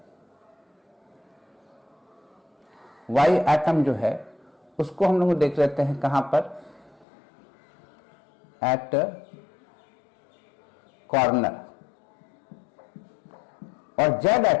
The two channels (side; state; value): right; drops out; at 7.1 s